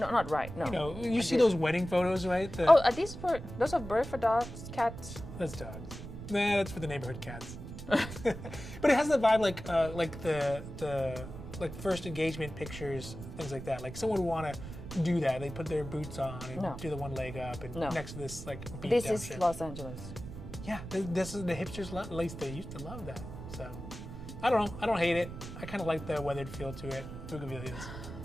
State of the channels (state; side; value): noise; right; rumble, 11 dB below the sound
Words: right. No. You see those wedding photos, right? Are these those are birds for dogs, cats? That's dogs. Nah, that's for the neighborhood cats. But it has the vibe like the first engagement pictures, things like that. Like someone would want to do that. They put their boots on and do the one leg up and next to this like beat This down is shit. Los Angeles. Yeah, this is the hipsters love. At least they used to love that. So I don't know. I don't hate it. I kind of like the weathered feel to it. Bougainvilleas.